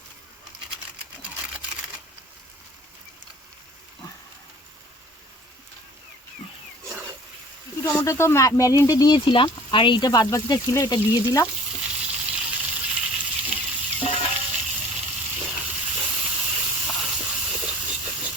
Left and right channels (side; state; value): both; normal; correlation 0.48